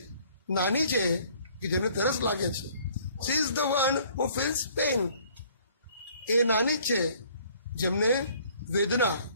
નાની છે કે જેમને તરસ લાગે છે. She is the one who feels pain. એ નાની જ છે જેમને વેદના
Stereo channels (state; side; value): inverted; both; correlation -0.57